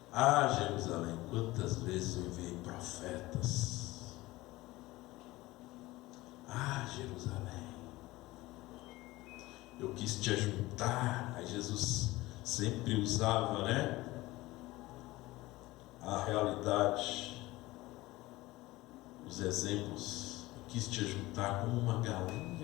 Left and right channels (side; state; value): right; quieter; 19.1 dB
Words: Ah, Jerusalém, quantas vezes eu enviei profetas. Ah, Jerusalém, eu quis te ajuntar. Aí Jesus sempre usava, a realidade, os exemplos. Eu quis te ajuntar como uma